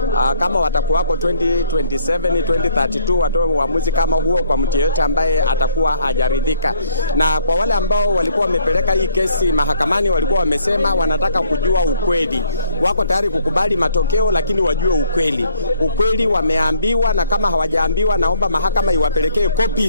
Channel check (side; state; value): both; inverted; correlation -0.64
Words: kama watakuwako 2027 2032 watoe uamuzi kama huo kwa mtu yeyote ambaye atakuwa hajaridhika. Na kwa wale ambao walikuwa wamepeleka hii kesi mahakamani, walikuwa wamesema wanataka kujua ukweli. Wako tayari kukubali matokeo, lakini wajue ukweli. Ukweli wameambiwa, na kama hawajaambiwa, naomba mahakama iwapelekee